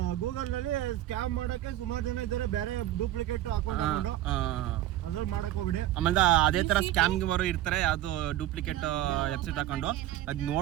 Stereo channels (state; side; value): quieter; left; 14.0 dB